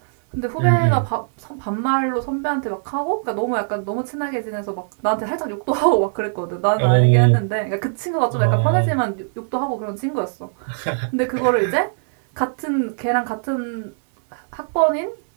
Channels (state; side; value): silent; left; digital silence